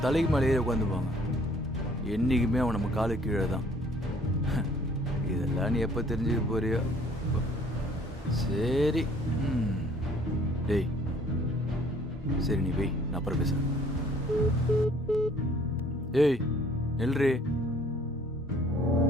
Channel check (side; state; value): both; normal; correlation 0.58